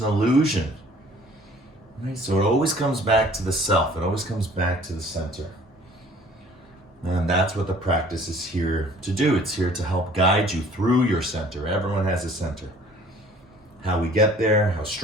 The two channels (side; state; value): both; normal; correlation 0.53